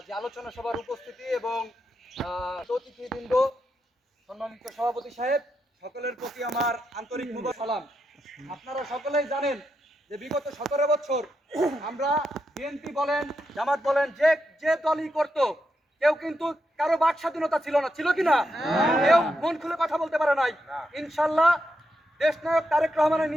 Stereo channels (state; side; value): normal; both; correlation 0.84